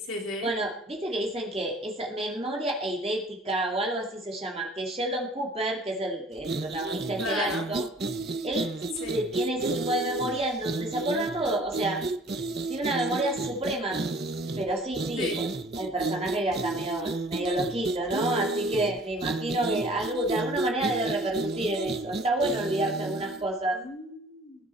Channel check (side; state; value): both; normal; correlation 0.51